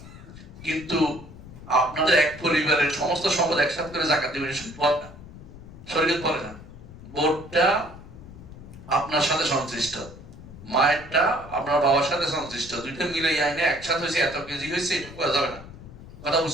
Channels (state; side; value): noise; left; rumble, 16 dB below the sound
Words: কিন্তু আপনাদের এক পরিবারের সমস্ত সম্পদ একসাথে করে যাকাত দিবেন, সম্পদ না, শরীয়ত বলে না। বোর্ডটা আপনার সাথে সংশ্লিষ্ট, মায়েরটা আপনার বাবার সাথে সংশ্লিষ্ট, দুইটা মিলে আইনে একসাথে হয়েছে, এত কেজি হয়েছে, এটা করা যাবে না। কথা